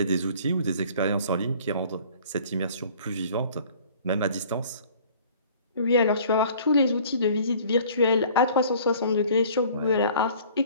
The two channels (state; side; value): inverted; both; correlation -0.51